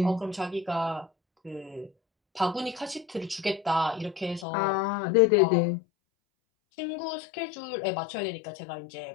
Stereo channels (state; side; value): drops out; right; at 4.5 s